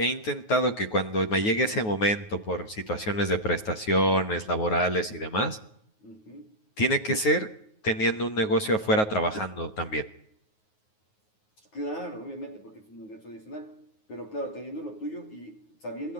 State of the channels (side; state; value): right; late; 9.4 ms